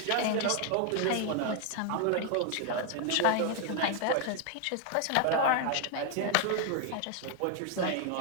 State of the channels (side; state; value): both; different; correlation 0.00